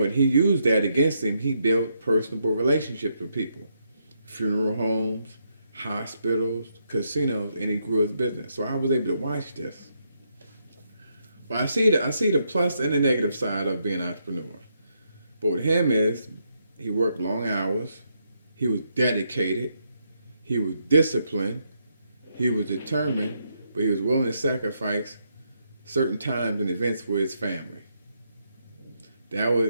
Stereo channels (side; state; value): both; inverted; correlation -0.78